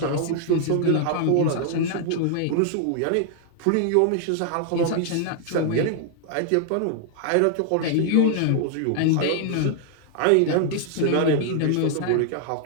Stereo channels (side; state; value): both; different; correlation 0.00